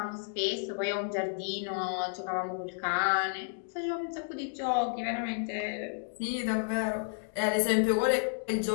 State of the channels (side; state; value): right; silent; digital silence